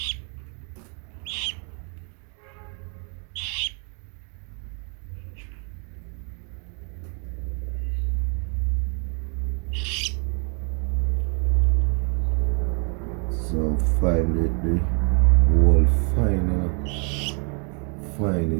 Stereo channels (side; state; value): left; quieter; 39.3 dB